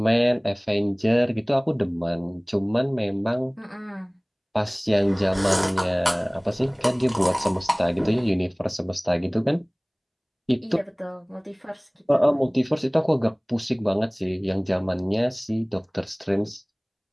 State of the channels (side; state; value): both; identical; correlation 1.00